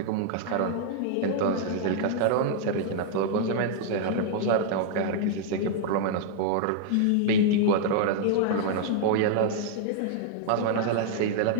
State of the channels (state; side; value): different; both; correlation -0.01